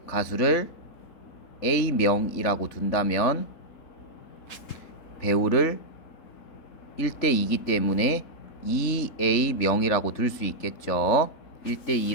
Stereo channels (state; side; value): late; right; 3.4 ms